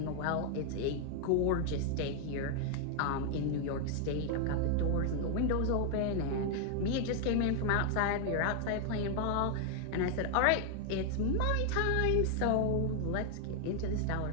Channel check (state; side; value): different; both; correlation 0.00